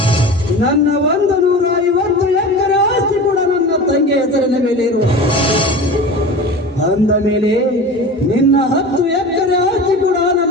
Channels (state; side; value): normal; both; correlation 0.34